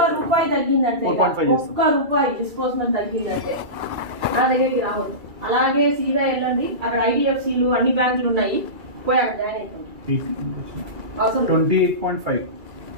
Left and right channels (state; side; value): late; left; 2.3 ms